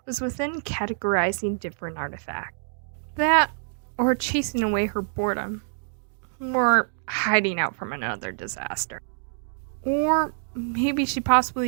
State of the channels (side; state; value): left; silent; digital silence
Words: was within categorizing different artifacts. That, or chasing away her boredom, or hiding out from another disaster. Or maybe she